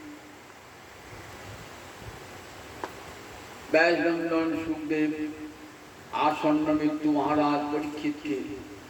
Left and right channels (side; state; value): both; identical; correlation 1.00